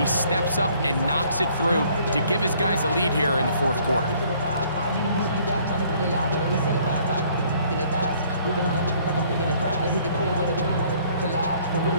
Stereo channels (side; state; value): both; inverted; correlation -0.60